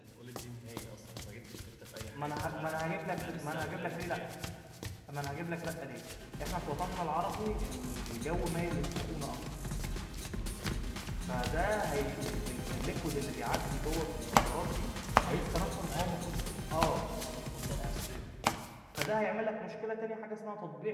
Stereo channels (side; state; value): both; identical; correlation 1.00